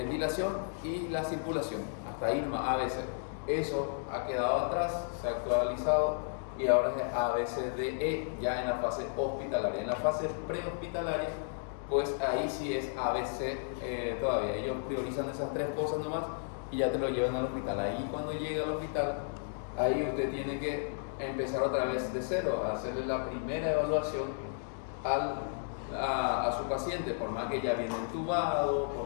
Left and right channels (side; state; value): right; silent; digital silence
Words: y la circulación, hasta ahí nomás ABC. Eso ha quedado atrás, se ha actualizado y ahora es ABCDE ya en la fase hospitalaria. En la fase prehospitalaria, pues ahí sí es ABC todavía. Ellos priorizan esas tres cosas nomás y ya te lo llevan al hospital. Ahí cuando llega al hospital, ahí usted tiene que empezar otra vez de cero, a hacerle la primera evaluación a su paciente, por más que ya viene entubado,